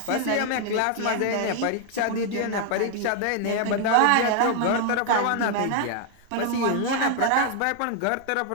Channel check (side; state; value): both; different; correlation 0.00